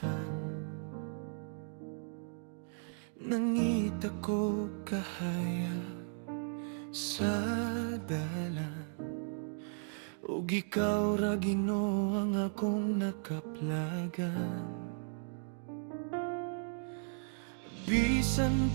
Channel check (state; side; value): silent; left; 54 dB below the other